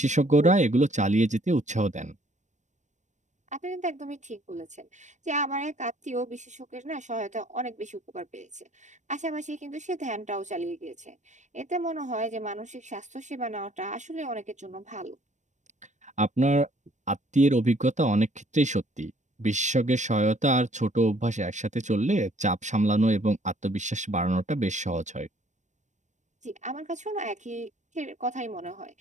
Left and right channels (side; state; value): left; late; 0.35 ms